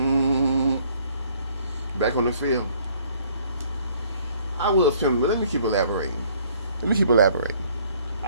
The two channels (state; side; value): inverted; both; correlation -0.60